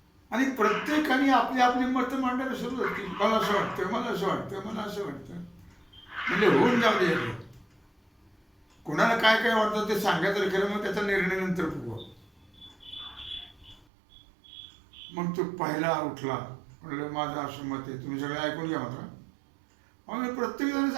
आणि प्रत्येकाने आपली आपली मतं मांडायला सुरुवात केली. मला असं वाटतं, मला असं वाटतं, मला असं वाटतं. म्हणजे होऊन जाऊ दे. कोणाला काय काय वाटतं ते सांगायचं खरं, मग त्याचा निर्णय नंतर बघू. मग तो पहिला उठला, म्हणलं माझं असं मत आहे, तुम्ही सगळं ऐकून घ्या मात्र. आम्ही प्रत्येक जण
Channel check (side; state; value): left; drops out; at 13.9 s